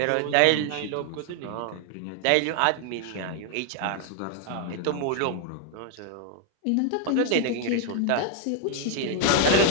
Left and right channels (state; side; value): different; both; correlation 0.00